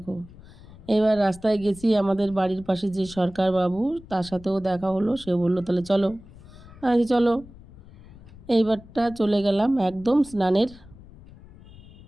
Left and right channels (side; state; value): left; noise; rumble, 20 dB below the sound